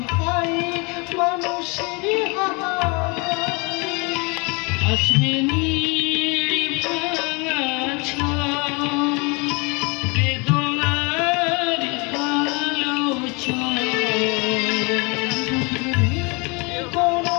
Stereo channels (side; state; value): right; quieter; 29.5 dB